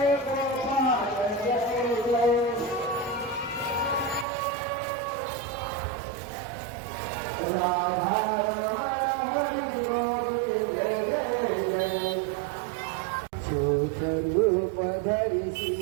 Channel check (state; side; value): drops out; left; at 4.2 s